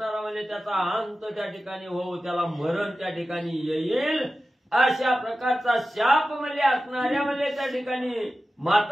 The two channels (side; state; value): both; normal; correlation 0.94